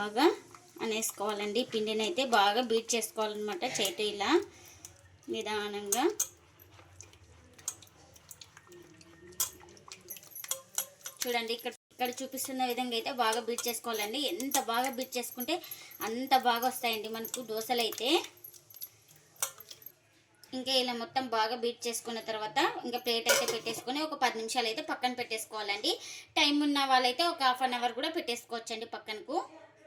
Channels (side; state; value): both; identical; correlation 1.00